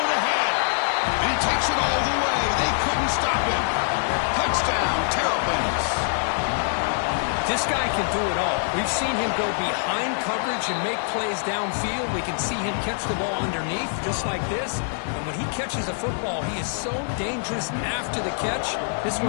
ahead. And he takes it all the way. They couldn't stop him. Touchdown, Terrapins. This guy can do it all. We've seen him go behind coverage and make plays downfield. We can see him catch the ball underneath, just like this. And when he catches a football, he is so dangerous after the catch. This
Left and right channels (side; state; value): right; silent; digital silence